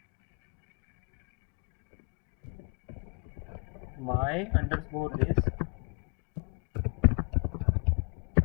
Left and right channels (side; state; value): right; quieter; 36.8 dB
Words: my underscore list